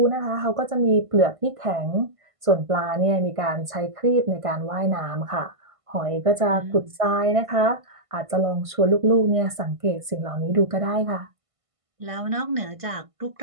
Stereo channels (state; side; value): late; left; 1.5 ms